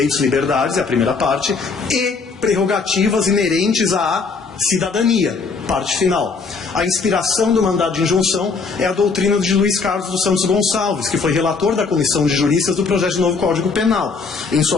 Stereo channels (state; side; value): quieter; right; 4.7 dB